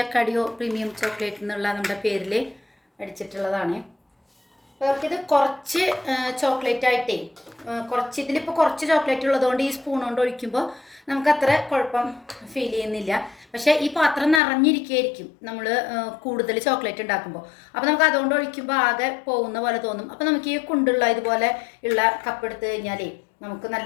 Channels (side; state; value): right; drops out; at 14.4 s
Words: അക്കാഡിയോ പ്രീമിയം ചോക്ലേറ്റ് എന്നുള്ള നമ്മുടെ പേരിൽ അടിച്ചിട്ടുള്ളതാണ്. അവർക്കിത് കുറച്ച് ചോക്ലേറ്റ് ആയിട്ടേ ഇതിലിപ്പോൾ കുറച്ച് ചോക്ലേറ്റ് ഉള്ളതുകൊണ്ട് ഈ സ്പൂൺ കൊണ്ട് ഒഴിക്കുമ്പോൾ നമുക്കത്ര കുഴപ്പം ഫീൽ ചെയ്യുന്നില്ല. പക്ഷേ ഈ പാത്രം നിറഞ്ഞിരിക്കുകയായിരിക്കും നമ്മൾ കൂടുതൽ ചോക്ലേറ്റ് ഉണ്ടാക്കുമ്പോൾ. അപ്പോൾ നമുക്ക് അതുകൊണ്ട് ഒഴിക്കുമ്പോൾ ആകെ പോകുന്ന പോലെ തോന്നും. അപ്പോൾ നമുക്ക് ഈ കുണ്ടുള്ള ഇതുപോലെ ഉള്ള കപ്പ് എടുത്ത് കഴിഞ്ഞാലേ നമുക്ക്